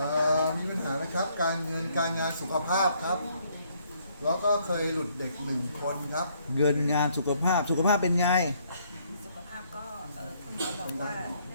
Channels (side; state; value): both; inverted; correlation -0.68